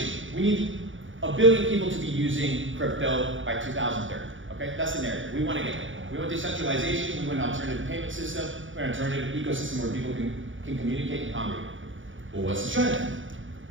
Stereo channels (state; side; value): late; left; 0.56 ms